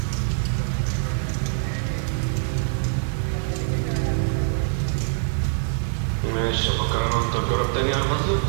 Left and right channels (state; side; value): silent; left; 63 dB below the other